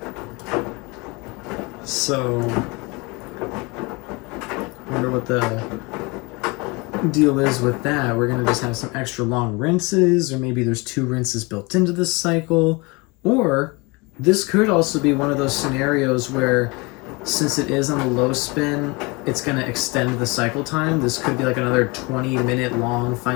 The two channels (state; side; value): quieter; right; 26.8 dB